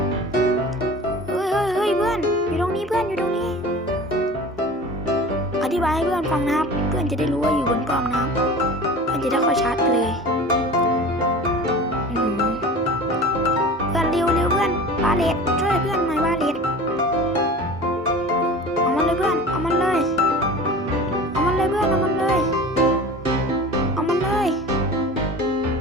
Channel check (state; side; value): normal; both; correlation 0.38